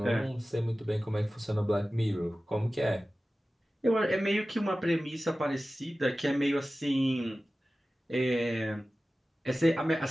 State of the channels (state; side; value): normal; both; correlation 0.96